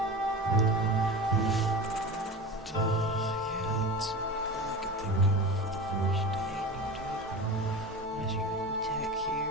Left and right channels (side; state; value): both; normal; correlation 0.29